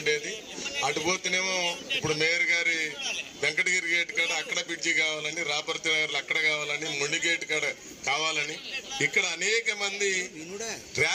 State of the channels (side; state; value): both; identical; correlation 1.00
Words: అటు పోతేనేమో ఇప్పుడు మేయర్ గారి వెంకటగిరి గేట్ కాడ అక్కడ బ్రిడ్జి కావాలని, రాపర్తి నగర్లో అక్కడ కావాలని, మొండి గేట్ కాడ కావాలని, ఇక్కడ అనేక మంది